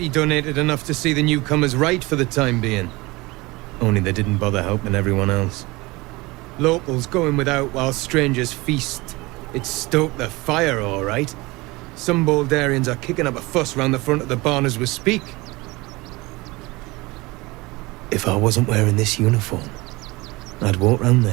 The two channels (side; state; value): left; quieter; 22.6 dB